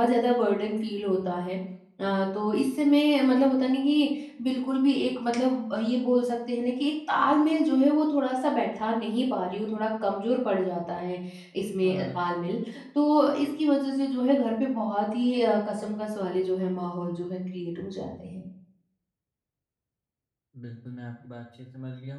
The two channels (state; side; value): identical; both; correlation 1.00